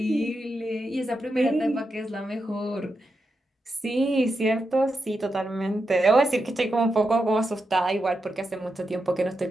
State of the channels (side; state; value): both; normal; correlation 0.87